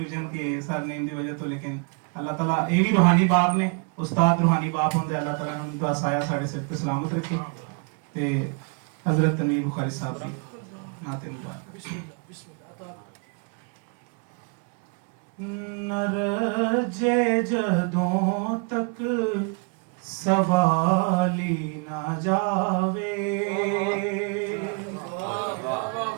के सर नेम की वजह तो, लेकिन अल्लाह ताला ये भी रूहानी बाप ने, उस्ताद रूहानी बाप होंगे, अल्लाह ताला उनका साया साढ़े सिर ते सलामत रखे। ते हजरत तनवीर बुखारी साहब की नाते मुबारक। न रजे जदों तक सवाली ना जावे,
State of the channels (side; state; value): left; quieter; 36.4 dB